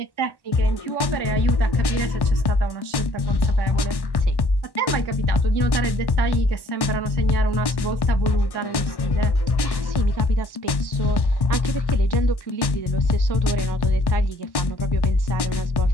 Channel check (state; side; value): late; right; 1.1 ms